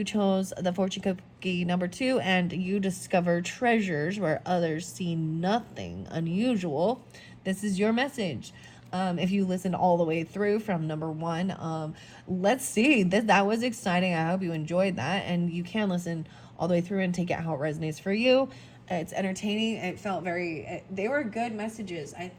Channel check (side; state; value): both; identical; correlation 1.00